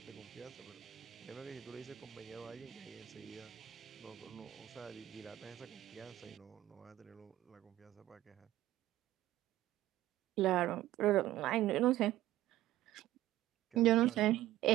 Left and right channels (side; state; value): left; quieter; 14.6 dB